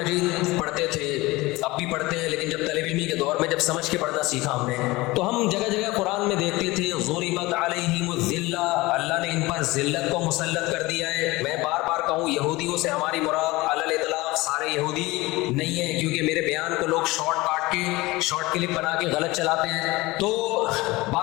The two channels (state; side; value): quieter; right; 20.9 dB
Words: پڑھتے تھے، اب بھی پڑھتے ہیں، لیکن جب طالب علمی کے دور میں جب سمجھ کے پڑھنا سیکھا ہم نے تو ہم جگہ جگہ قرآن میں دیکھتے تھے ضربت علیہم الذلہ، اللہ نے ان پر ذلت کو مسلط کر دیا ہے. میں بار بار کہوں یہودیوں سے ہماری مراد علی الاطلاق سارے یہودی نہیں ہیں، کیونکہ میرے بیان کو لوگ شارٹ کلپ بنا کے غلط چلاتے ہیں. تو